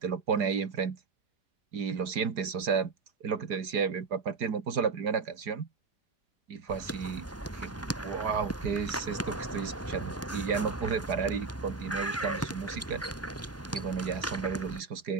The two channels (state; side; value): quieter; left; 4.7 dB